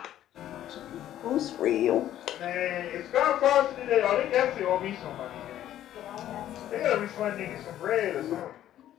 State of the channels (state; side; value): quieter; right; 12.1 dB